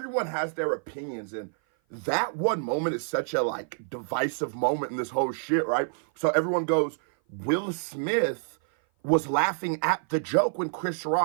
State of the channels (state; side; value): silent; left; 56 dB below the other